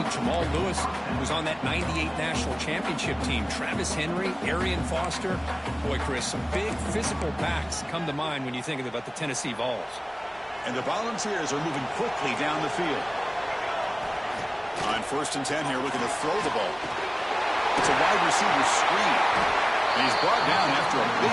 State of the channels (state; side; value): identical; both; correlation 1.00